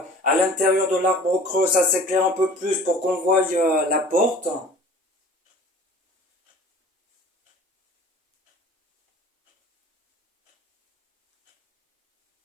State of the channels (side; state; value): both; normal; correlation 0.46